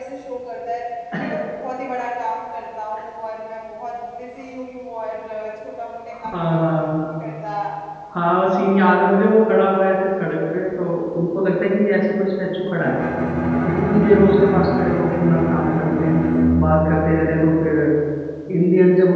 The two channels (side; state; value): both; identical; correlation 1.00